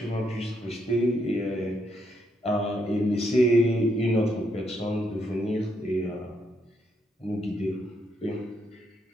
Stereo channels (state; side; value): normal; both; correlation 0.76